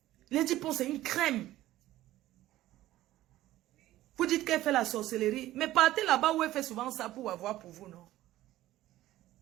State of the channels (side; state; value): left; quieter; 15.1 dB